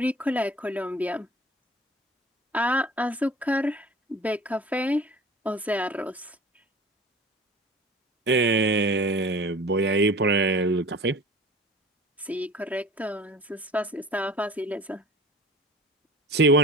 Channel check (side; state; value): both; normal; correlation 0.42